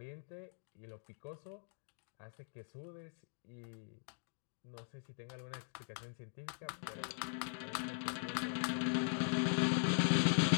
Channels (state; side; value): silent; right; digital silence